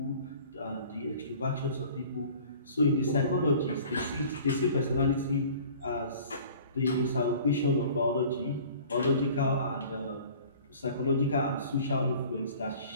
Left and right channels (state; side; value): inverted; both; correlation -0.47